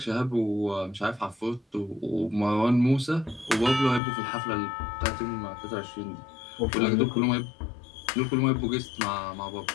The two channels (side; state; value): right; drops out; at 4.0 s